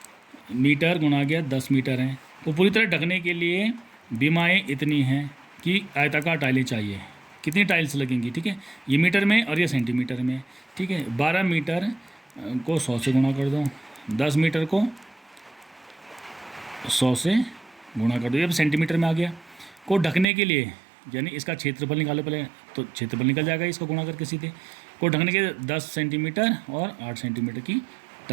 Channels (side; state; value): left; drops out; at 20.2 s